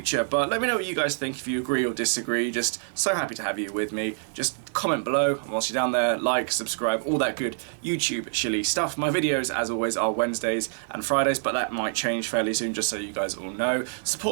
But let me know what you guys think, if you agree or disagree. Just so happy to have you with me. Just comment below, and whilst you're down there, like, subscribe, all that good YouTube shilly stuff. My videos, as always, are Wednesdays and Fridays, but that might change fairly soon, just so you guys all know.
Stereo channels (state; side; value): silent; left; 60 dB below the other